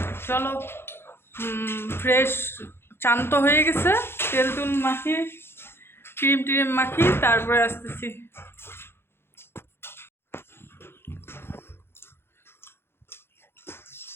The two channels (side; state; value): right; late; 0.11 ms